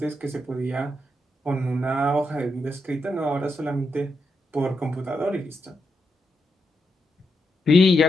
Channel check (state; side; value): normal; both; correlation 0.84